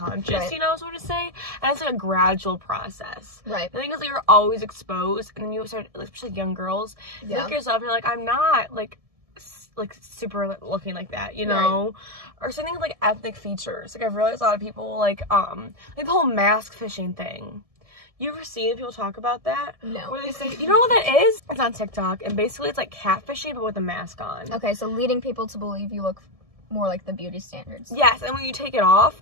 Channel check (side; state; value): left; late; 1.7 ms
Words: you know, sort of say. And it's, like, a gradual process. Right. The thing is, like, you're always exposed, and then you start, like, especially young girls, you look at yourself and you're like, I'm not, like super looking like that, you know? Right. Or something like ethnic features. Like, I've realized a lot of people, like the whole mask fishing thing. You ever seen people talk about that? No. Where they say, you know what that is? It's on TikTok, and basically it's like catfishing, but with a mask on. Okay, so leading people to believe you look more like the beauty standards. Yes, and when you take it off,